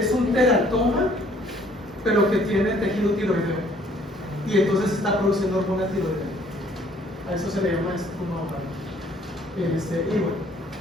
un teratoma, pero que tiene tejido tiroideo. Y entonces está produciendo hormona tiroidea. A eso se le llama estruma ovario. Y bueno.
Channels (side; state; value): both; normal; correlation 0.60